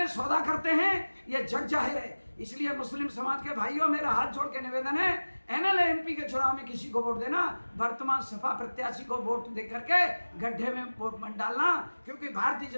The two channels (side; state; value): both; inverted; correlation -1.00